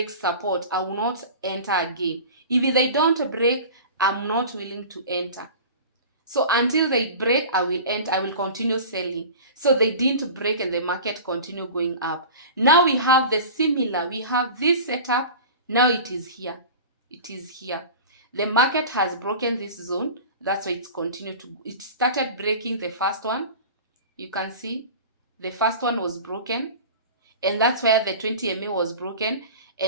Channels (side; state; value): both; inverted; correlation -0.36